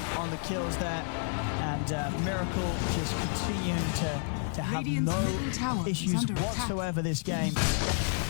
on the kills there, and Miracle just continuing to have no issues whatsoever this game,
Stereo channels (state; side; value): silent; right; 58 dB below the other